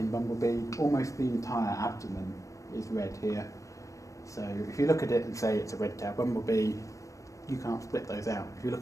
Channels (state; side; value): late; right; 0.15 ms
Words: bumblebee, almost the entire abdomen is red here. So if you look at it and say it's a red-tailed bumblebee, you can't split those out. If you